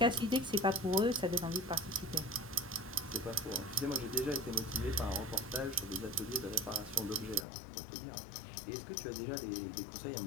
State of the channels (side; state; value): right; drops out; at 7.5 s